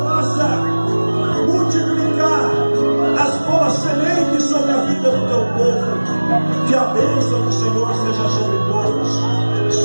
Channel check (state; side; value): inverted; both; correlation -1.00